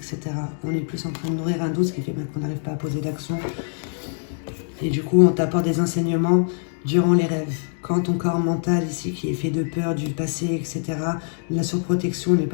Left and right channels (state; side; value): silent; right; 63 dB below the other